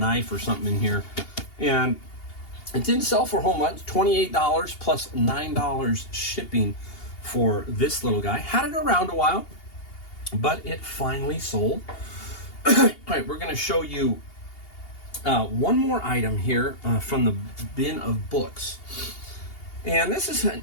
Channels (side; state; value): right; late; 2.8 ms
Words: or something in here. And it didn't sell for a whole much, $28 plus $9 shipping for this little guy. Had it around a while, but it finally sold. All right, we're going to show you one more item here from the bin of books. And this is an